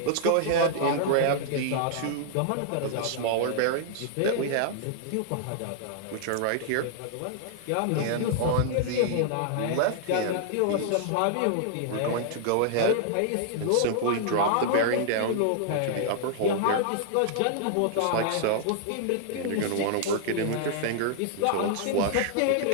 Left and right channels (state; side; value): different; both; correlation -0.01